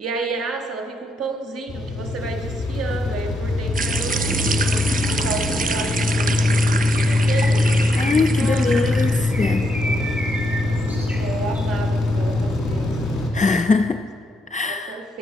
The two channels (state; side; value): normal; both; correlation 0.79